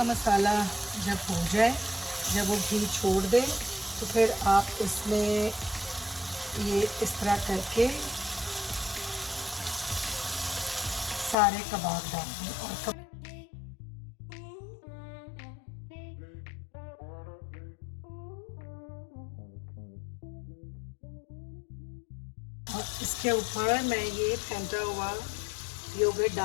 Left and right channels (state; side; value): drops out; right; at 11.4 s